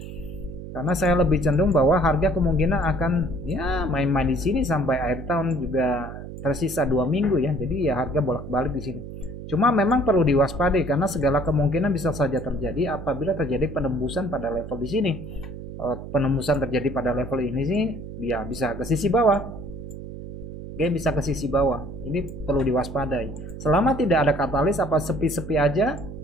karena saya lebih cenderung bahwa harga kemungkinan akan ya main-main di sini sampai akhir tahun, juga tersisa 2 minggu ya. Jadi ya harga bolak-balik di sini. Cuma memang perlu diwaspadai karena segala kemungkinan bisa saja terjadi apabila terjadi penembusan pada level di sini. Penembusan terjadi pada level ini sih, ya bisa ke sisi bawah. Oke, bisa ke sisi bawah. Ini perlu diwaspadai. Selama tidak ada katalis apa sepi-sepi aja,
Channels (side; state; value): right; noise; hum, 11 dB below the sound